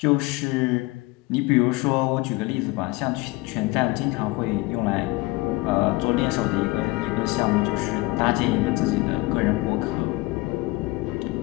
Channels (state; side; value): quieter; right; 22.2 dB